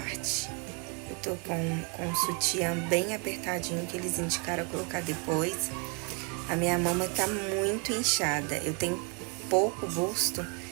Eu tô com um sutiã bem apertadinho, que eles indicaram colocar depois. A minha mama tá muito inchada. Eu tenho pouco busto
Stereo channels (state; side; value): quieter; left; 34.5 dB